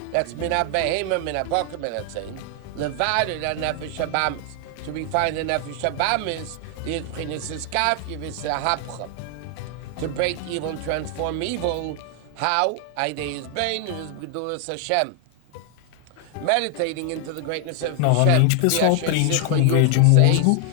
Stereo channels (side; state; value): both; different; correlation 0.00